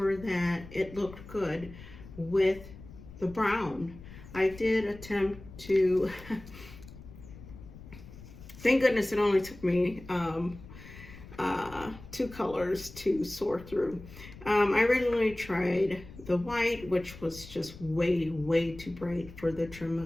that it looked good with the brown. I did attempt to, thank goodness it only took me 2 colors to sort through. I originally tried the white, which was just way too bright for the trim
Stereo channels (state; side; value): noise; left; rumble, 17 dB below the sound